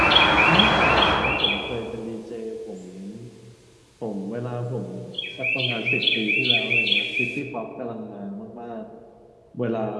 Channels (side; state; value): both; identical; correlation 1.00